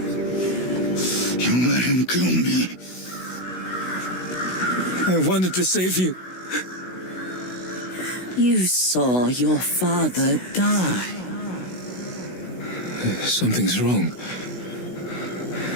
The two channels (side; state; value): right; late; 16 ms